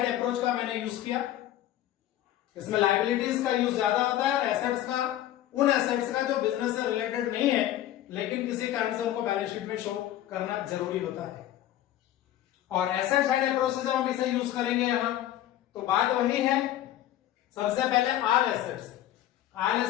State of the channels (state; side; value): quieter; right; 13.0 dB